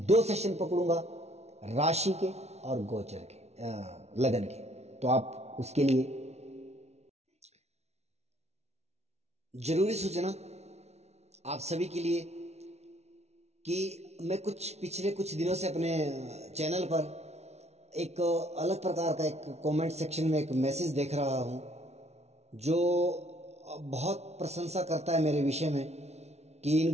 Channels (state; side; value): late; left; 0.31 ms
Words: 2 सेशन पकड़ूंगा, राशि के और गोचर के, लगन के, तो आप उसके लिए जरूरी सूचना आप सभी के लिए कि मैं पिछले कुछ दिनों से अपने चैनल पर एक अलग प्रकार का एक कमेंट सेक्शन में एक मैसेज देख रहा हूं, जो बहुत प्रशंसा करता है मेरे विषय में कि इन